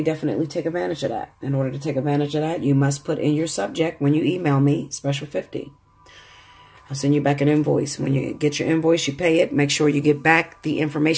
definitely take advantage of that. In order to take advantage of that, you must put in your subject when you email me, Special 50. I'll send you back an invoice. When you get your invoice, you pay it. Make sure you get back the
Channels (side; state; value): both; identical; correlation 1.00